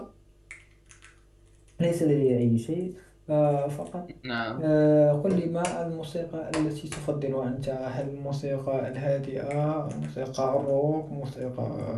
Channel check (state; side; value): identical; both; correlation 1.00